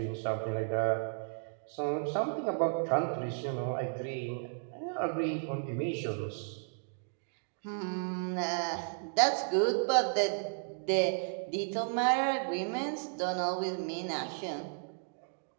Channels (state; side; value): silent; left; digital silence